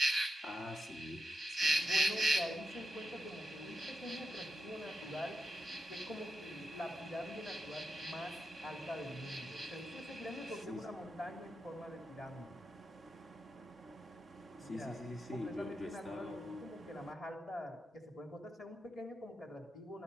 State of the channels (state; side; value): normal; both; correlation 0.85